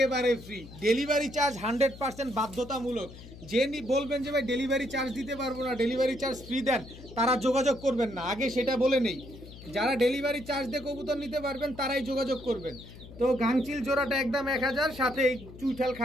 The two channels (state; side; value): noise; left; hum, 17 dB below the sound